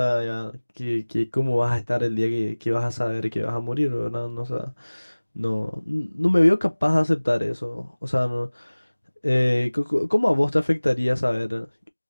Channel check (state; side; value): inverted; both; correlation -1.00